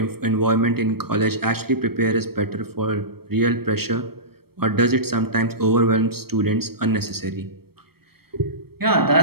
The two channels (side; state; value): left; late; 0.95 ms